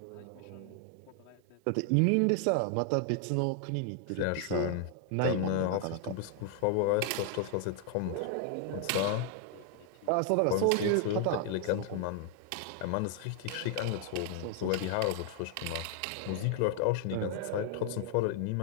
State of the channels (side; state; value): both; different; correlation 0.00